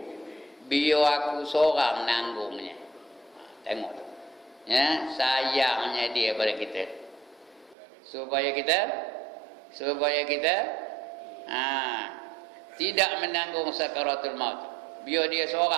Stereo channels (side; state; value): left; drops out; at 7.8 s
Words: biar aku seorang nanggungnya. Tengok tu, ya, sayangnya dia pada kita, supaya kita tidak menanggung sakaratul maut, biar dia